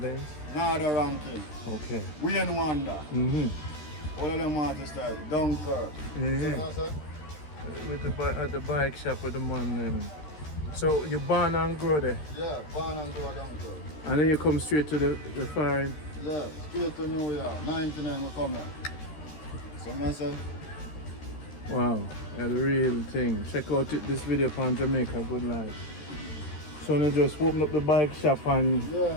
Nada ranking. Okay. Wayne Wonder. All of them artists like Dunkirk. Yeah. So, With at the bike shop with the man. So you born and grow there? yeah, born and grow Dunkirk. And then you come straight to the foreign? Yeah, straight to New York. 99 we come here. So I say, Wow, yeah, the real thing. Check out this video on Jamaica Good Life. So now just open up the bike shop and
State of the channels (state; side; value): late; right; 13 ms